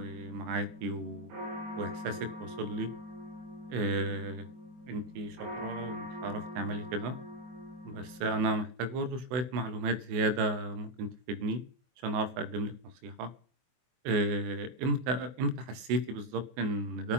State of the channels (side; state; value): left; late; 23 ms